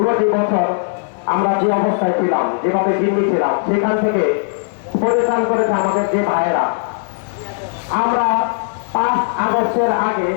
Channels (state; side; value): silent; right; 68 dB below the other